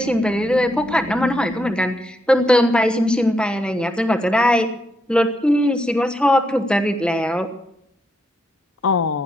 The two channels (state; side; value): normal; both; correlation 0.79